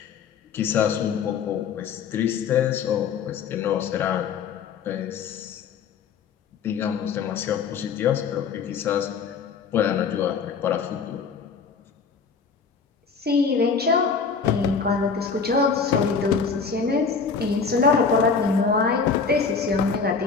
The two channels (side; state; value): right; quieter; 5.6 dB